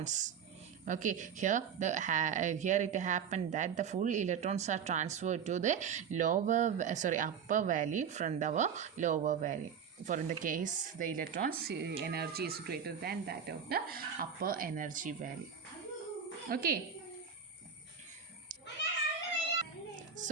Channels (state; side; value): quieter; left; 7.2 dB